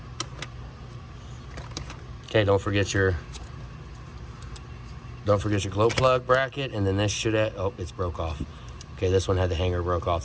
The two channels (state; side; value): identical; both; correlation 1.00